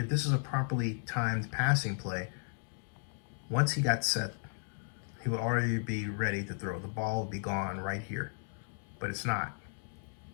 this is a properly timed passing play, once he got set, he will already be ready to throw. The ball will be gone right here, but it's not.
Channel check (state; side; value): silent; right; 55 dB below the other